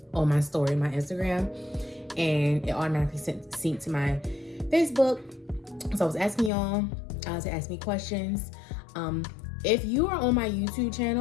on my story, my Instagram, and it automatically synced to my Facebook. So I was asking y'all to ask me questions. If you are on my YouTube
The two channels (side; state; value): right; drops out; at 6.5 s